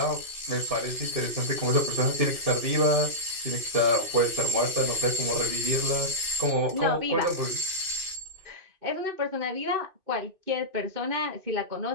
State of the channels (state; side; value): late; left; 2.6 ms